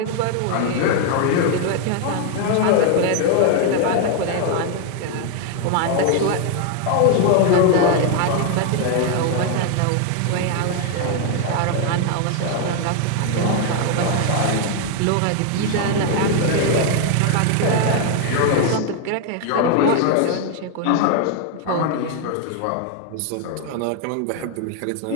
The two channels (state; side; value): different; both; correlation 0.00